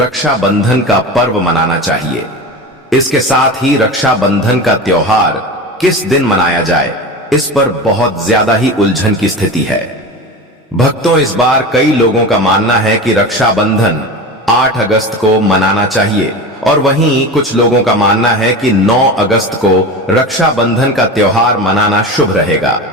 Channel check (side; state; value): both; normal; correlation 0.28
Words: का पर्व मनाना चाहिए। इसके साथ ही रक्षाबंधन का त्योहार किस दिन मनाया जाए, इस पर बहुत ज्यादा ही उलझन की स्थिति है। भक्तों, इस बार कई लोगों का मानना है कि रक्षाबंधन 8 अगस्त को मनाना चाहिए और वहीं कुछ लोगों का मानना है कि 9 अगस्त को रक्षाबंधन का त्योहार मनाना शुभ रहेगा।